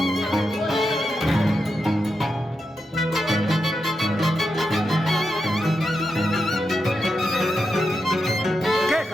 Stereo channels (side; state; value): both; normal; correlation 0.87